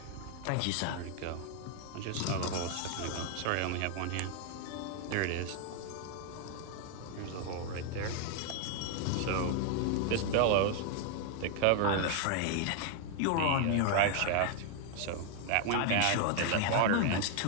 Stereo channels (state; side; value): different; both; correlation 0.00